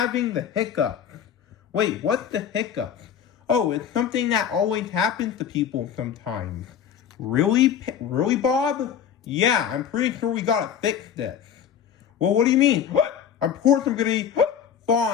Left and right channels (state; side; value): quieter; right; 8.5 dB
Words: the hiccups. Wait, what's the hiccups? Oh, it's something that always happens to people sometimes. Really, Bob? Yeah, I'm pretty sure we gotta fix this. Well, what do you mean? Of course I'm gonna be